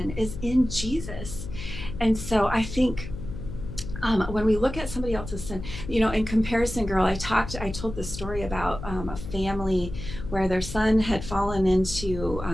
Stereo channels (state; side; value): noise; left; hum, 9 dB below the sound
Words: is in Jesus. And so I think when we look at somebody else's sin, in Comparison Girl, I told this story about a family where their son had fallen into